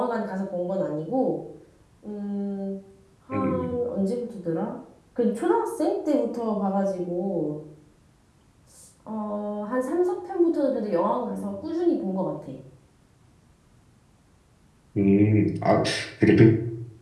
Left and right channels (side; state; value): both; identical; correlation 1.00